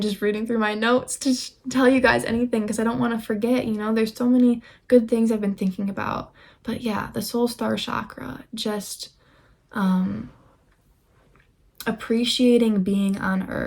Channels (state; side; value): identical; both; correlation 1.00